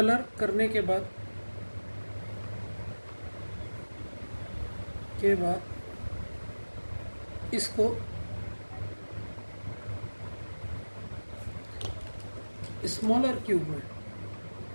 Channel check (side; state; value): both; inverted; correlation -1.00